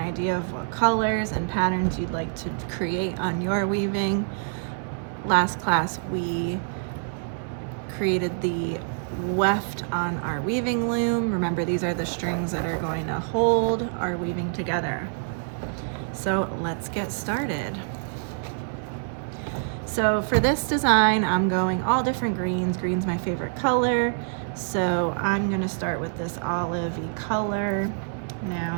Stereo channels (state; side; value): silent; left; digital silence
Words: of what colors and patterns you'd like to create on your weaving. Last class we created the weft on our weaving loom. Remember, these are the strings that are going to hold our weaving together. So let's get started. So for this design, I'm going all different greens. Green's my favorite color. So I'm going to start with this olivey color.